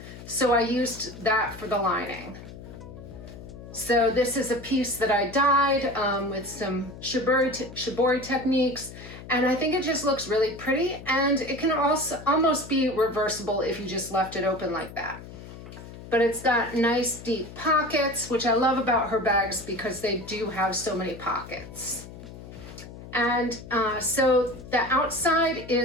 so I used that for the lining. So this is a piece that I dyed with some shibori techniques, and I think it just looks really pretty, and it can also almost be reversible if you just left it open like that. But it's got nice deep pockets, which I love about her bags because they do have so many pockets. And so the outside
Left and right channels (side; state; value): left; noise; hum, 14 dB below the sound